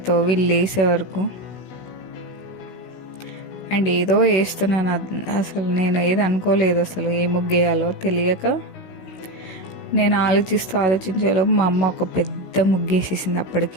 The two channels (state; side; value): late; right; 16 ms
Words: లేసే వరకు. అండ్ ఏదో వేస్తున్నాను, అసలు నేను ఏది అనుకోలేదు, అసలు ఏ ముగ్గు వేయాలో తెలియక నేను ఆలోచించేలోపు మా అమ్మ ఒక పెద్ద ముగ్గేసేసింది